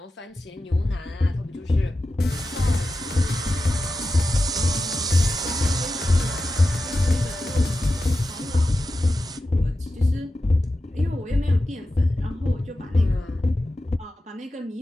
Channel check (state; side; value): normal; both; correlation 0.92